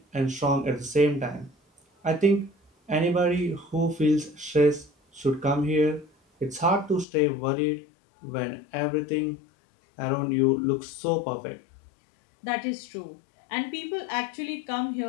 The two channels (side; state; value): right; drops out; at 7.1 s